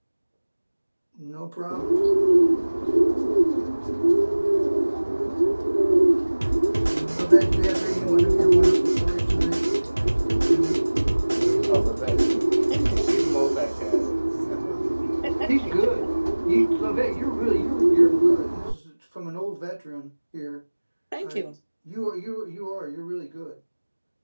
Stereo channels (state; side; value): inverted; both; correlation -1.00